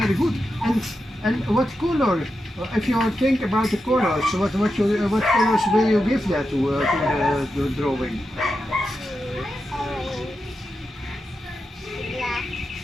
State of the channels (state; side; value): normal; both; correlation 0.89